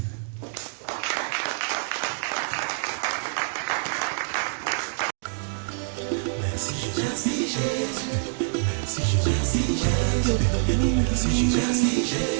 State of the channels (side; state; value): left; silent; digital silence